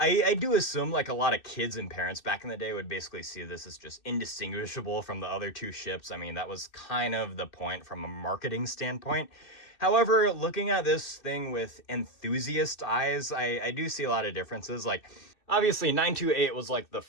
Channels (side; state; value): right; late; 2.6 ms